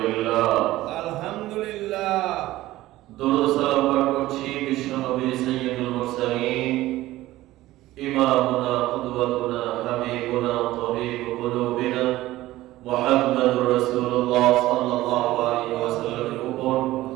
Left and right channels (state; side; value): quieter; left; 16.4 dB